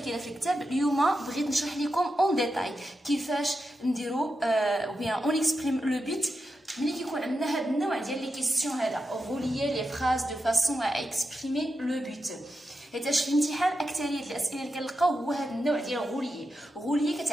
في الكتاب. اليوم بغيت نشرح لكم اون ديتاي كيفاش نديرو او بيان اون اكسبريم لو بوت ملي كيكون عندنا هذا النوع ديال لي كيسيون هذا غوليي لي فراز دو فاسون ا اكسبريمي لو بوت. حيتاش في الامتحان اكثريه الاسئله اللي كنلقاو هو هذا النوع ديال غوليي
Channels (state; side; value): normal; both; correlation 0.88